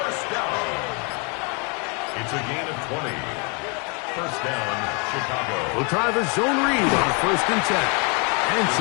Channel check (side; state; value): right; quieter; 34.1 dB